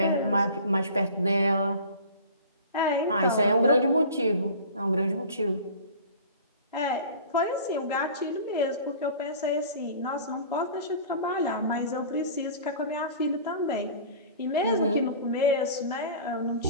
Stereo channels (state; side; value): inverted; both; correlation -0.41